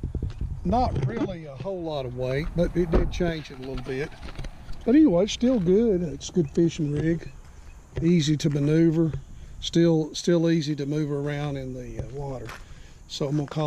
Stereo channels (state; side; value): identical; both; correlation 1.00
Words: Not really a whole lot of weight, but it did change it a little bit. But anyway, it's still good. It's a good fishing rig, easy to maneuver, still easy to move around in the water. So I'm gonna